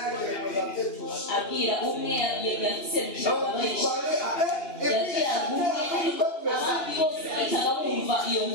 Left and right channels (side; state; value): right; late; 2.9 ms